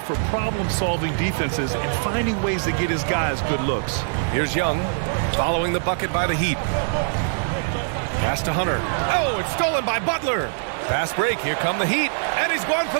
for problem-solving defenses and finding ways to get his guys good looks. Here's Young following the bucket by the Heat. Pass to Hunter. Oh, it's stolen by Butler. Fast break. Here come the Heat. And he's going for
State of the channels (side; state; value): left; silent; 63 dB below the other